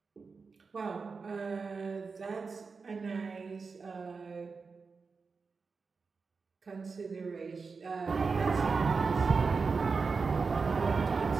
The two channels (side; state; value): left; quieter; 4.8 dB